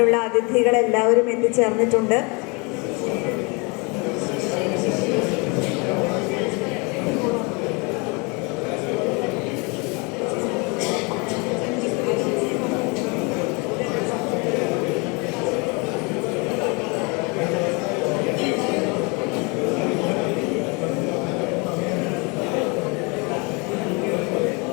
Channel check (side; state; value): right; quieter; 30.1 dB